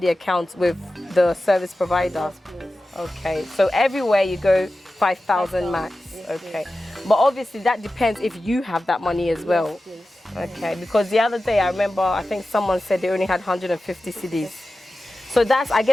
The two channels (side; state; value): both; normal; correlation 0.94